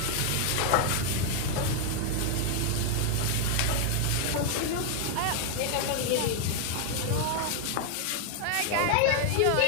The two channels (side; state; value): both; different; correlation 0.00